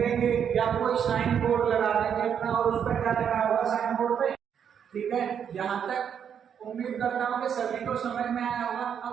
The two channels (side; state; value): left; quieter; 8.1 dB